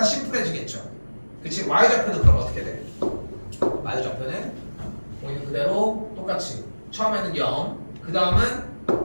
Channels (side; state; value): both; inverted; correlation -1.00